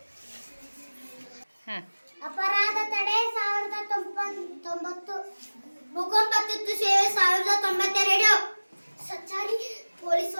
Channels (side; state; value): both; inverted; correlation -1.00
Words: ಅಪರಾಧ ತಡೆ 1090, ಭೂಕಂಪ ತುರ್ತು ಸೇವೆ 1092, ಸಂಚಾರಿ ಪೊಲೀಸ್